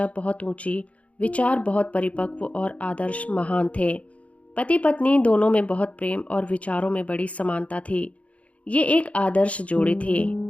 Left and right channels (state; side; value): late; right; 0.065 ms